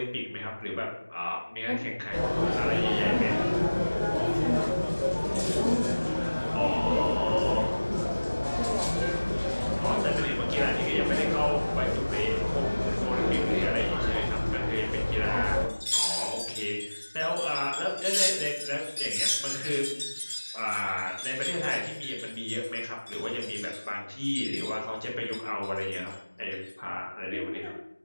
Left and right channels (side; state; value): both; inverted; correlation -1.00